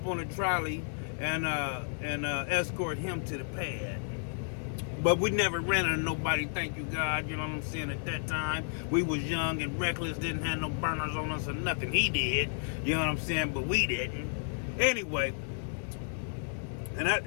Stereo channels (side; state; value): right; silent; 56 dB below the other